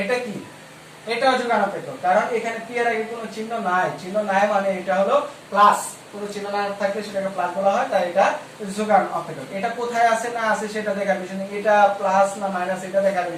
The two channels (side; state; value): both; identical; correlation 1.00